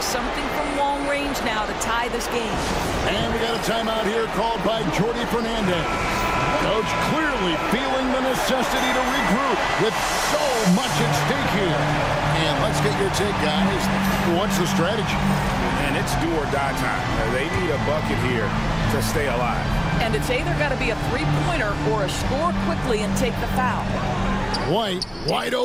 something from long range now to tie this game. And we got a timeout here called by Jordi Fernandez. Coach clearly feeling the necessity to regroup with so much at stake here. And let's get your take, guys. What's the strategy? And it's do or die time. They need a bucket here to stay alive. And it's either got to be a three-pointer or a score quickly and take the foul. White, wide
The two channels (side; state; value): both; identical; correlation 1.00